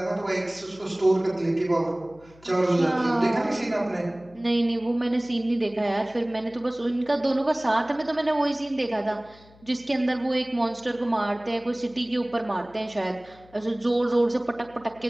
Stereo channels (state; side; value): noise; left; hum, 26 dB below the sound